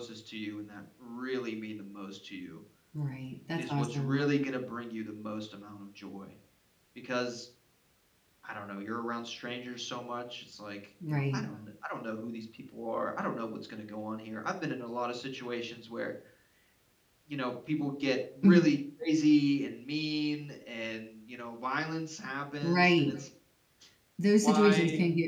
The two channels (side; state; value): both; identical; correlation 1.00